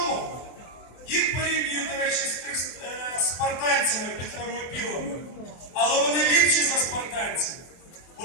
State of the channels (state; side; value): late; right; 24 ms